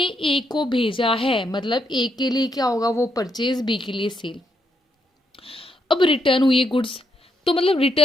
ए को भेजा है, मतलब ए के लिए क्या होगा वो परचेज, बी के लिए सेल। अब रिटर्न हुई है गुड्स, तो मतलब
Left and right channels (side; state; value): both; normal; correlation 0.78